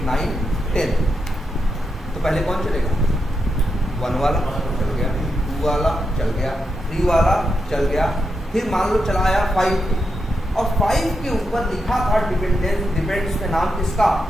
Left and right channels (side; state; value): both; normal; correlation 0.85